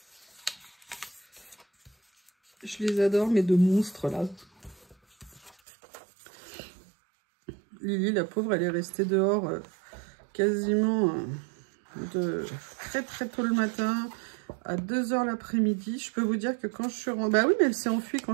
Je les adore, mes deux monstres là. Lily, la pauvre, elle est restée dehors quasiment de très tôt le matin à 2 h l'après-midi. Je peux vous dire que quand je suis rentrée... Bah oui, mais elle s'est enfuie quand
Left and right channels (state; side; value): drops out; left; at 5.6 s